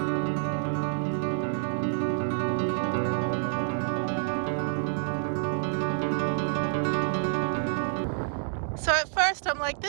So at first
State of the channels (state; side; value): silent; left; 59 dB below the other